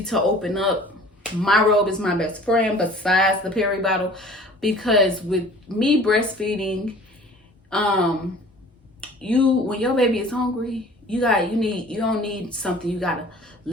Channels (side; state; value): both; normal; correlation 0.48